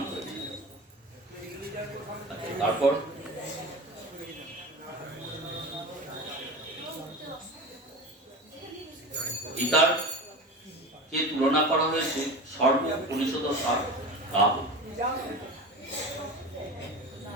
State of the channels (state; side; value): normal; both; correlation 0.30